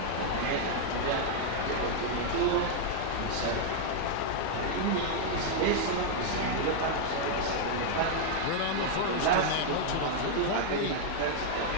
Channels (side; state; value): both; different; correlation 0.00